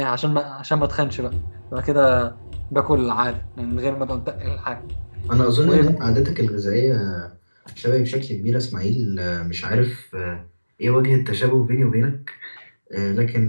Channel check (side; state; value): both; inverted; correlation -1.00